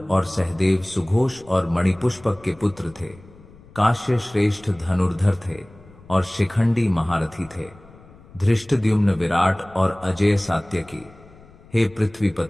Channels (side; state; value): left; noise; rumble, 24 dB below the sound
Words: और सहदेव सुघोष और मणिपुष्पक के पुत्र थे। काश्य श्रेष्ठ धनुर्धर थे और शिखंडी महारथी थे। धृष्टद्युम्न विराट और अजय सात्यकी। हे